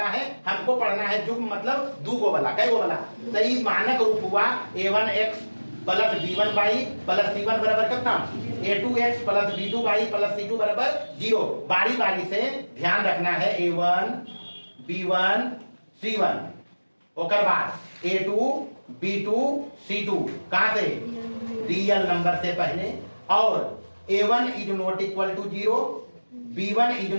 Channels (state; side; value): inverted; both; correlation -1.00